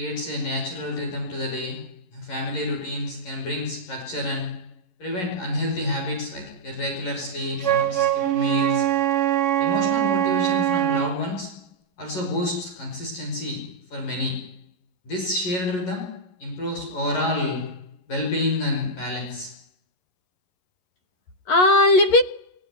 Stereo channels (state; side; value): late; right; 11 ms